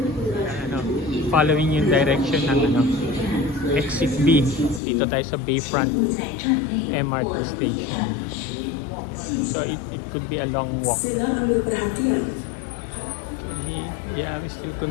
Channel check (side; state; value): right; drops out; at 4.8 s